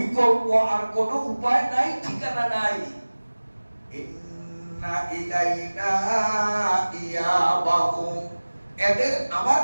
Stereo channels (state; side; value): inverted; both; correlation -1.00